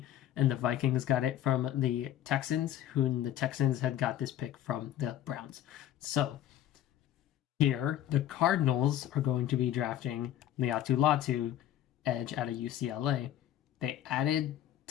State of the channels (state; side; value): quieter; right; 12.0 dB